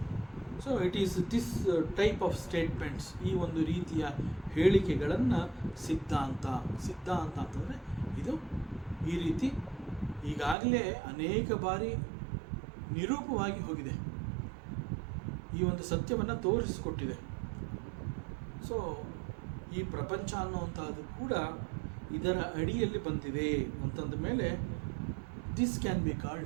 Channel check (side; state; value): left; drops out; at 10.6 s